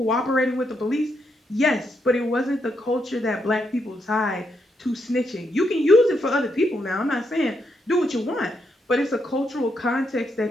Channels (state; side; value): normal; both; correlation 0.79